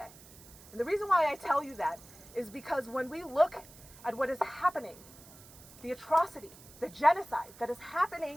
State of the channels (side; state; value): right; noise; hiss, 20 dB below the sound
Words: And the reason why I tell you that is because when we look at what is happening, the atrocity, the genocide that is